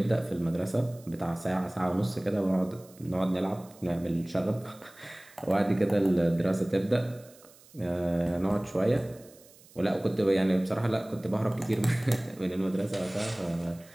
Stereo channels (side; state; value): right; noise; hiss, 25 dB below the sound